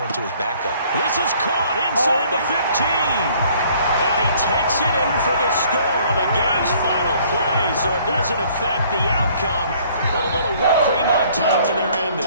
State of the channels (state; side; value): inverted; both; correlation -0.59